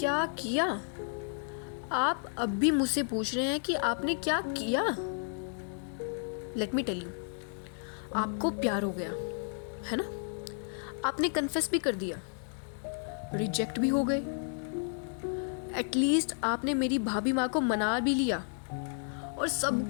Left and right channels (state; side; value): silent; right; 56 dB below the other